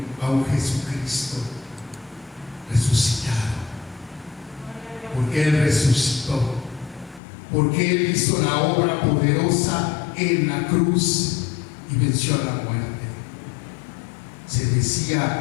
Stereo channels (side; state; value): right; drops out; at 7.2 s